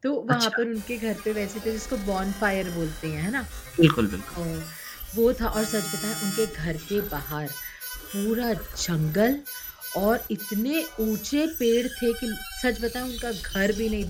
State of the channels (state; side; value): identical; both; correlation 1.00